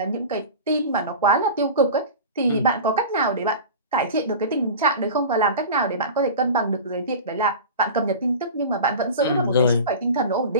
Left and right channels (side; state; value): both; inverted; correlation -0.33